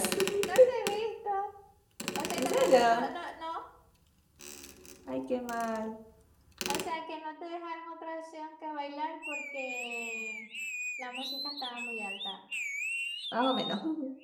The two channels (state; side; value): identical; both; correlation 1.00